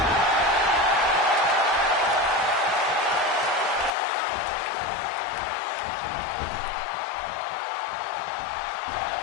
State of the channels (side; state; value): right; drops out; at 3.9 s